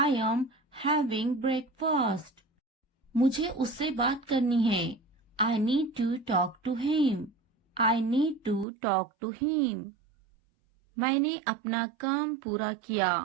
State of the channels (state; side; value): drops out; left; at 8.7 s